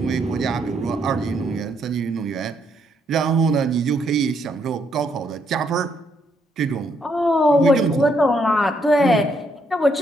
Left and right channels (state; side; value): normal; both; correlation 0.74